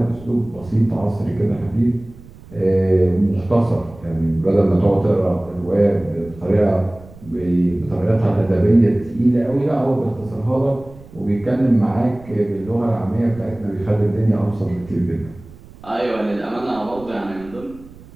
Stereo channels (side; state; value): right; noise; rumble, 20 dB below the sound